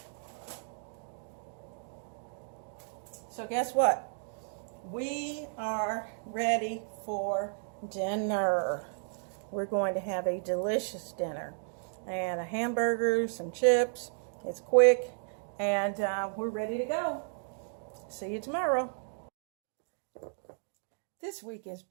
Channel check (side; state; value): left; silent; digital silence